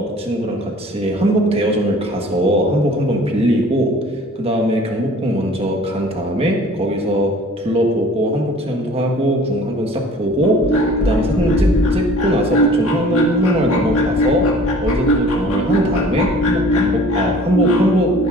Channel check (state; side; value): normal; both; correlation 0.49